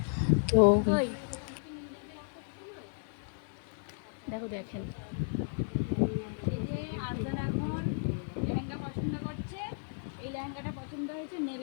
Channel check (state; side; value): silent; right; 55 dB below the other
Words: তো দেখেন এই যে আরজান এখন লেহেঙ্গা পছন্দ করছে। এই লেহেঙ্গাটা পছন্দ হয়েছে,